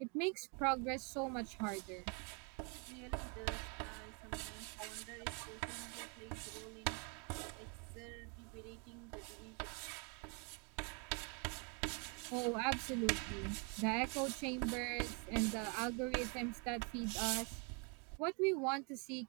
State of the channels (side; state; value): left; quieter; 34.9 dB